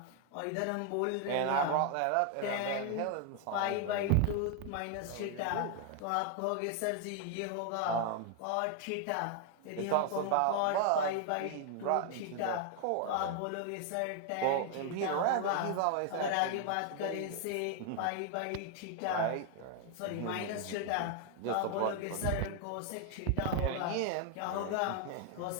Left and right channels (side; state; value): both; different; correlation 0.00